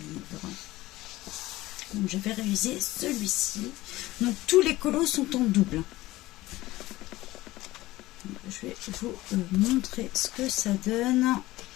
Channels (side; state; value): right; quieter; 17.8 dB